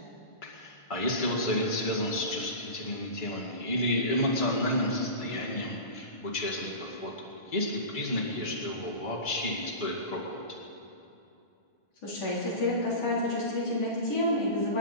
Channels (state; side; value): late; right; 1.5 ms